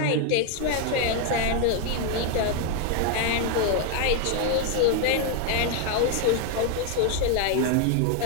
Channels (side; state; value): both; different; correlation 0.00